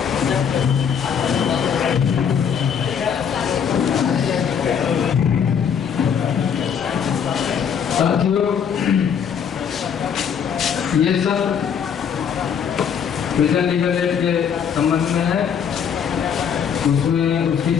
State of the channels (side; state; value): right; quieter; 7.5 dB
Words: साथियों, ये सब प्रिजन लीगल एड के संबंध में है। उसमें उसकी